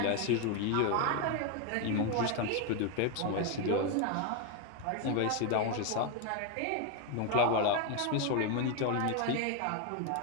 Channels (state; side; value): different; both; correlation 0.01